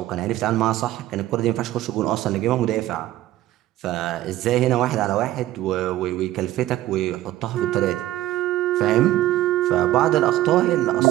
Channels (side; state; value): left; quieter; 14.9 dB